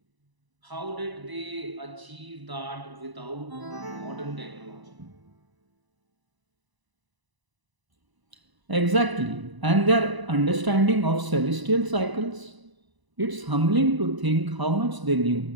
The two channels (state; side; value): late; left; 1.0 ms